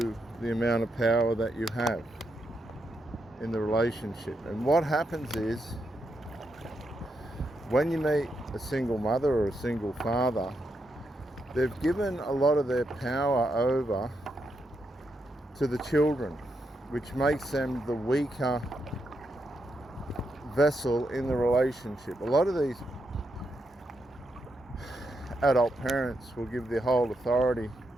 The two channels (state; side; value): normal; both; correlation 0.82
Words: the amount of power that you have in the relationship. And what happens is, when you meet a single mother or a single father, they've given a lot of their power over to the children, which makes them the weaker vessel in the relationship. A lot of these adult parents will give the whole authority